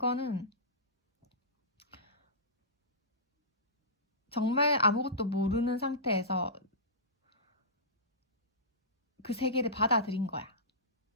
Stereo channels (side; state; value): both; normal; correlation -0.20